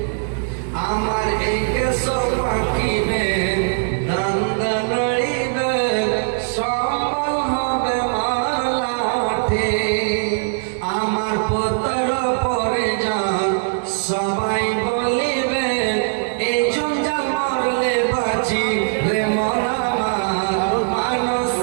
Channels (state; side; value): silent; left; 65 dB below the other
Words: আমার এই কেশ পাকিবে, দন্দ নড়িবে, সম্বল হবে মালাঠে। আমার পুত্র পরিজন সবাই বলিবে, এই জঞ্জাল মরলে বাঁচি রে মন আমার,